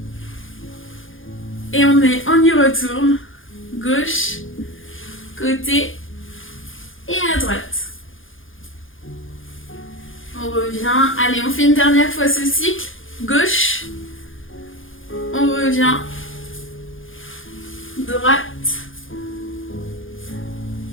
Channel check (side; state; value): right; late; 0.58 ms